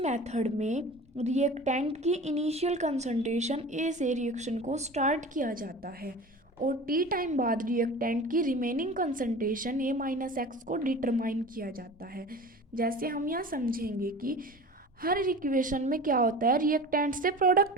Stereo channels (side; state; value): both; normal; correlation 0.37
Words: में रिएक्टेंट की इनिशियल कंसंट्रेशन ए से रिएक्शन को स्टार्ट किया जाता है और टी टाइम बाद रिएक्टेंट की रिमेनिंग कंसंट्रेशन ए माइनस एक्स को डिटरमाइन किया जाता है। जैसे हम यहाँ समझेंगे कि हर इक्वेशन में क्या होता है, रिएक्टेंट से